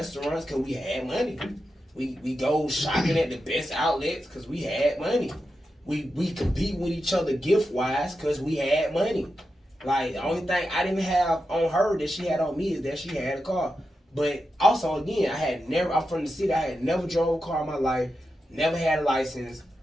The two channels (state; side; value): normal; both; correlation 0.89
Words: because we had money. We go shopping at the best outlets because we had money. We compete with each other gift-wise because we had money. Like, the only thing I didn't have on her that she had on me is that she had a car. But also, again, I'm from the city. I had never drove a car in my life, never had a license.